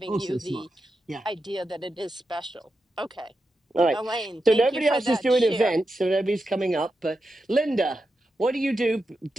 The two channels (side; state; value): both; normal; correlation 0.88